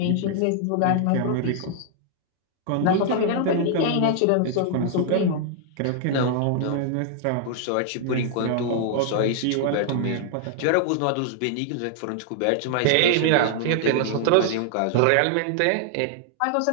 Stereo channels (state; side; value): different; both; correlation -0.01